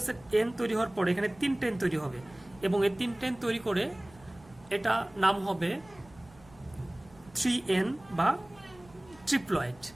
এন তৈরি হওয়ার পরে এখানে 3টা এন তৈরি হবে, এবং এই 3টা এন তৈরি করে এটা নাম হবে 3n বা ট্রিপ্লয়েড।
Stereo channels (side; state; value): right; noise; rumble, 25 dB below the sound